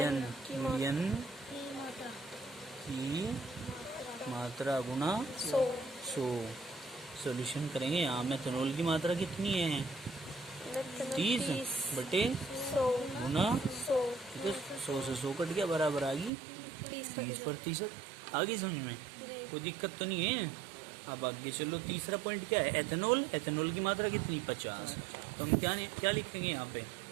की मात्रा गुना 100। सॉल्यूशन करेंगे। यहाँ मेथेनॉल की मात्रा कितनी है? 30 बटे 100 गुना 100। 100 से 100 कट गया, बराबर आ गई 30%। आगे समझ में कोई दिक्कत तो नहीं है? अब आगे चलो, तीसरा पॉइंट क्या है? एथेनॉल की मात्रा कितनी? 50। तो हम क्या लिखेंगे यहाँ पे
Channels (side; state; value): left; drops out; at 16.3 s